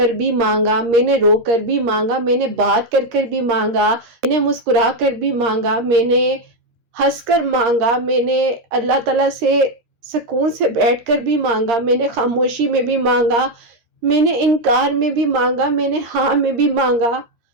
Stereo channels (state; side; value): late; left; 13 ms